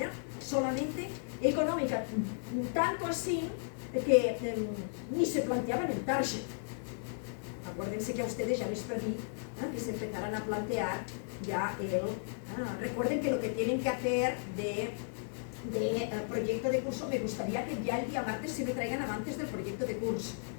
Solamente económica, tanto así que ni se planteaban el target. Acuérdense que a ustedes ya les pedí que se empezaran a plantear ya recuerden que lo que tienen que hacer de proyecto de curso, me gustaría que ya el día martes se me traigan avances del proyecto de curso,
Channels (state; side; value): silent; right; digital silence